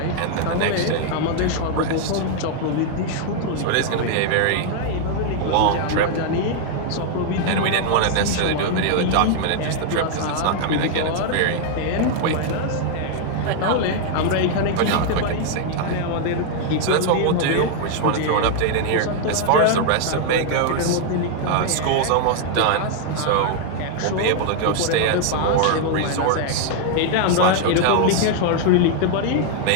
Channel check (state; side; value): different; both; correlation 0.00